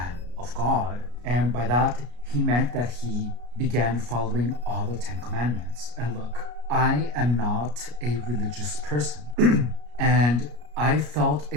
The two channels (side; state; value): left; late; 33 ms